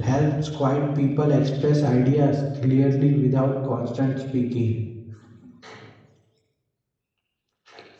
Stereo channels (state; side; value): identical; both; correlation 1.00